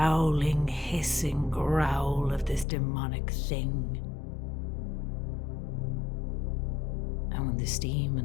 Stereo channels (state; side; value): drops out; right; at 2.7 s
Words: hissing growl of this demonic thing. And when the steam